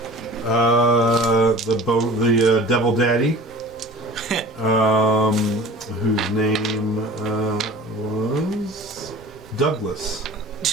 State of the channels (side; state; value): both; normal; correlation 0.41